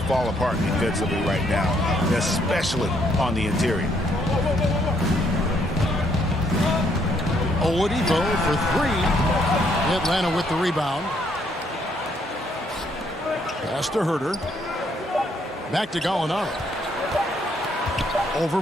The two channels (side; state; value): both; normal; correlation 0.70